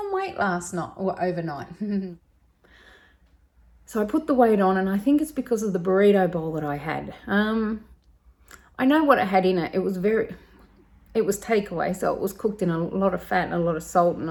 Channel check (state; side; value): identical; both; correlation 1.00